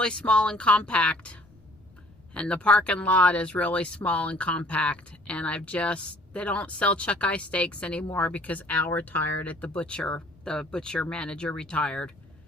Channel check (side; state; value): left; noise; rumble, 28 dB below the sound